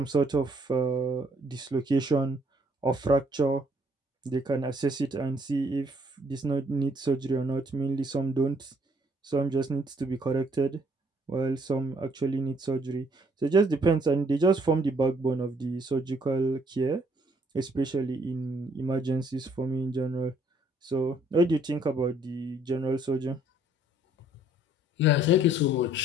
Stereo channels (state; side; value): normal; both; correlation 0.64